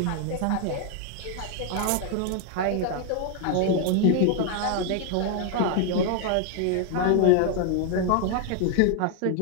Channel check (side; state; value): both; different; correlation 0.00